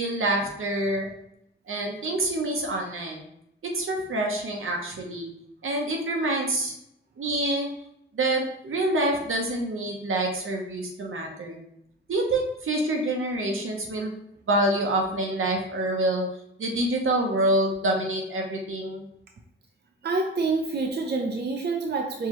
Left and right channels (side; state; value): both; normal; correlation 0.22